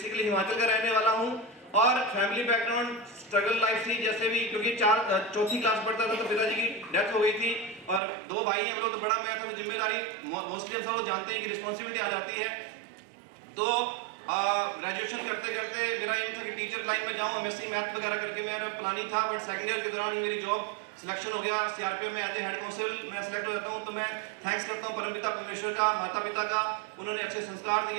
हिमाचल का रहने वाला हूँ और फैमिली बैकग्राउंड स्ट्रगल लाइफ थी। जैसे भी क्योंकि 4th क्लास पढ़ता था तो पिताजी की डेथ हो गई थी और 2 भाई हम लोग, तो बड़ा मैं था, तो जिम्मेदारी मोस्टली हम सब लोग जानते हैं कि रिस्पॉन्सिबिलिटी आ जाती है। तो ग्रेजुएशन करते करते मेरा एम था कि टीचर लाइन में जाऊँ, एमएससी मैथ वगैरह करके मेरा प्लानिंग था। बट सेकंड ईयर के दौरान ही मेरी जॉब सिलेक्शन हो गया। सीआरपीएफ में एज ए हेड कांस्टेबल मैं सिलेक्ट हो जाता हूँ। तो मैं थैंक्स करता हूँ परमपिता परमेश्वर का, माता पिता का, उन्होंने अच्छे संस्कार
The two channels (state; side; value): drops out; left; at 8.0 s